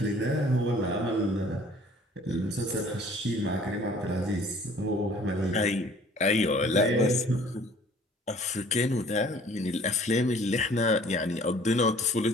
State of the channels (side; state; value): both; normal; correlation 0.53